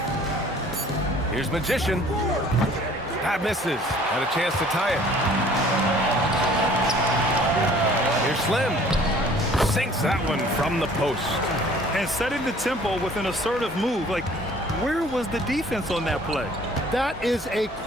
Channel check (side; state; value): both; normal; correlation 0.53